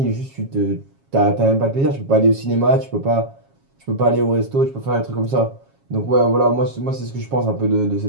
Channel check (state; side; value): late; left; 7.3 ms